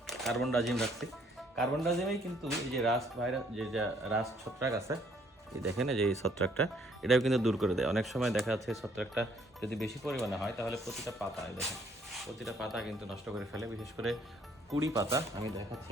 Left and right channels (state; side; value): normal; both; correlation 0.64